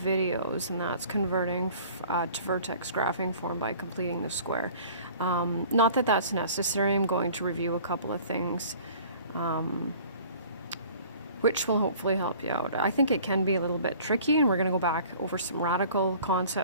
and that's converting to vertex graphing form by completing the square. Not that that's necessary. I'm going to review a couple of things which will hopefully help you out. I think it can be a little bit tricky, and we're going to go back over some radical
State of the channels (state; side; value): inverted; both; correlation -0.49